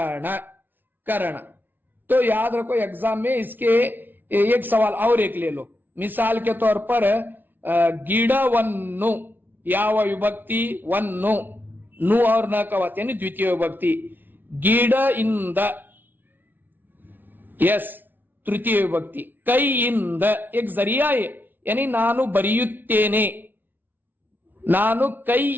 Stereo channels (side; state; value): left; late; 0.091 ms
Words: करण तो याद रखो एग्जाम में इसके एक सवाल और एक ले लो. मिसाल के तौर पर गिड़वन्नु ಯಾವ विभक्ति, वन्नु, नु और न का वत यानी द्वितीय विभक्ति. गिड़ इंद, यस तृतीय विभक्ति. कई इंद एक जरिया है यानी ನಾನು ಬರೆಯುತ್ತೇನೆ, ನಾನು